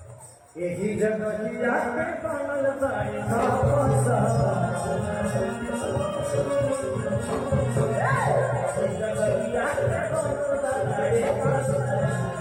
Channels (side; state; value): both; identical; correlation 1.00